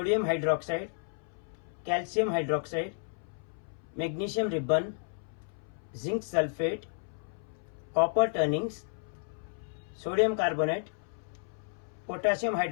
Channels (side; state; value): right; silent; 56 dB below the other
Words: hydroxide, calcium hydroxide, magnesium ribbon, zinc sulfate, copper turnings, sodium carbonate, potassium